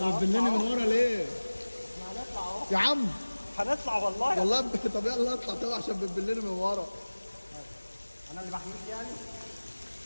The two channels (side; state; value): both; inverted; correlation -1.00